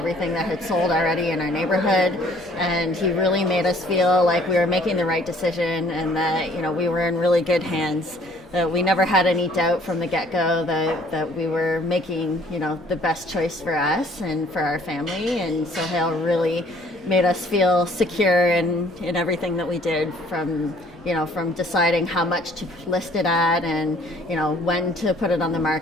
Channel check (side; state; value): both; normal; correlation 0.58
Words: that had sold already in our neighborhood, and he really made us feel like we were making the right decision and that we were in really good hands. That we never had any doubt from the get-go that we were making the best choice for us and for our family. And Sohail really made us feel secure in everything that we did, from deciding how much to list it at and when to put it on the